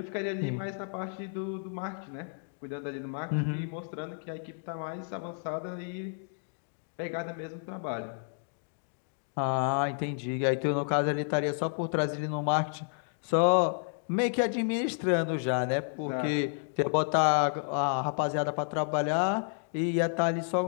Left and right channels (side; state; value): right; silent; digital silence